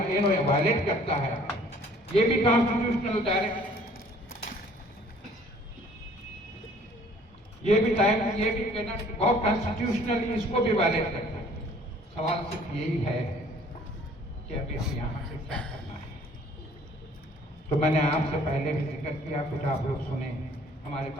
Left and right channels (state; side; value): normal; both; correlation 0.55